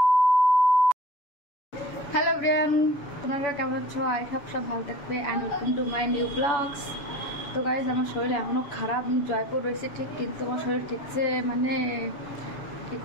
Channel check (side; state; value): right; late; 7.1 ms